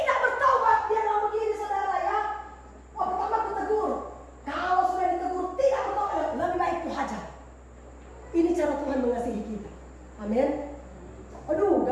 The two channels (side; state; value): both; identical; correlation 1.00